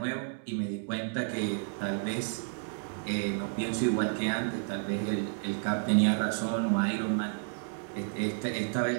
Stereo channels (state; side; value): silent; left; digital silence